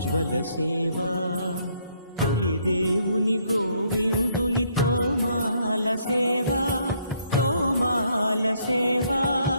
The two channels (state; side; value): inverted; both; correlation -0.69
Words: సేవా తొలి దేవుని గోవిందుని తోమాల సేవా తోమాల సేవా